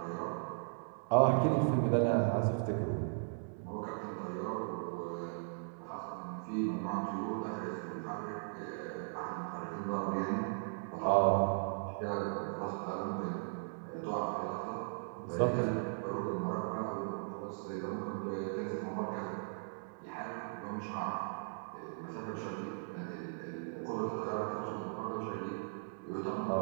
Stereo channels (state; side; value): silent; left; digital silence